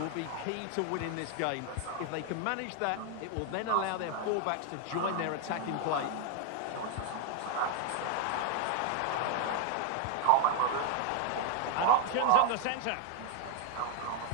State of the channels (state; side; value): different; both; correlation 0.00